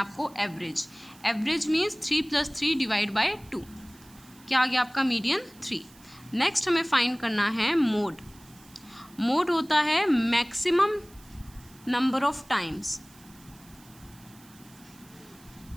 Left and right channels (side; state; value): right; noise; hiss, 25 dB below the sound